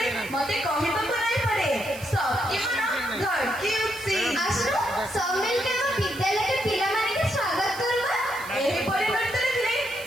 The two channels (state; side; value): noise; right; hiss, 16 dB below the sound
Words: ମତେ କହିବାକୁ ନାଇଁ ପଡେ सबकी मन धड़की उठसी। आसु सब मिलके हम विद्यालय के पिलामाने के स्वागत करबा। एही परिवर्तन देखले